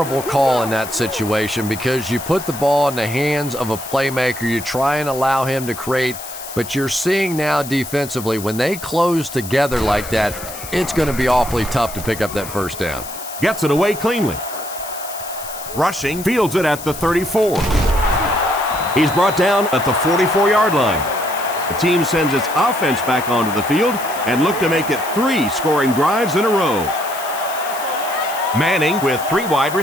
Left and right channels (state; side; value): noise; left; hiss, 12 dB below the sound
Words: call in that situation because you put the ball in the hands of a playmaker. You try and allow him to create, but you're seeing now defensively, when they close together like that, it's going to be awfully tough to pick up that first down. Gets it away cleanly. Rushing, fields it at the 34. He's brought down at the 44-yard line. The team sends its offense back onto the field and look to make it 3 scoring drives in a row. Manning with 3 wide